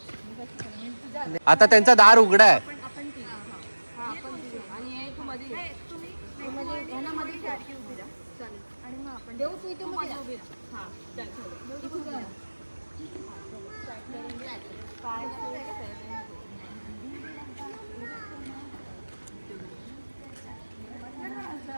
आता त्यांचा दार उघडा आहे.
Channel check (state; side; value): inverted; both; correlation -1.00